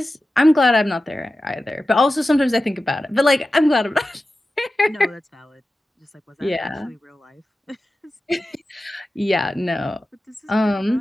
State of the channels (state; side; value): normal; both; correlation 0.94